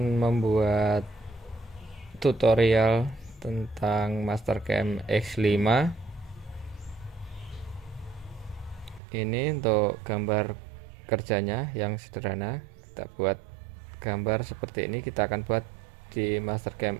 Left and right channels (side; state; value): left; drops out; at 9.0 s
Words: membuat tutorial tentang Mastercam X5. Ini untuk gambar kerjanya yang sederhana. Kita buat gambar seperti ini, kita akan buat di Mastercam